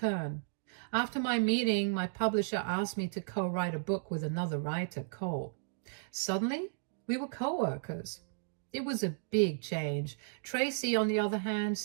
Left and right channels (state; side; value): silent; left; digital silence